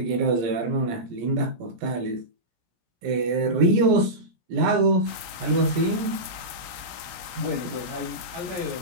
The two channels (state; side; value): late; left; 17 ms